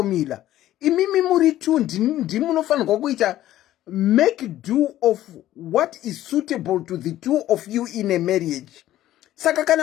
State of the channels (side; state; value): right; quieter; 13.7 dB